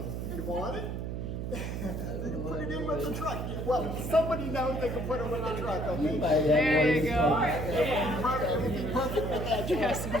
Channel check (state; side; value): noise; right; hum, 4 dB below the sound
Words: You want it? They can put it in with the truck. Well, somebody knows they can put it with the truck, okay? There you go. It would be perfect with that truck. Yes,